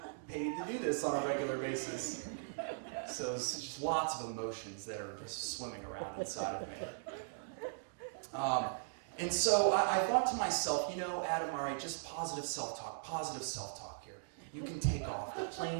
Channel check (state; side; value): silent; left; digital silence